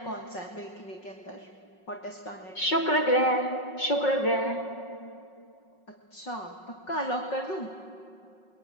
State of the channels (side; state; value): right; late; 5.4 ms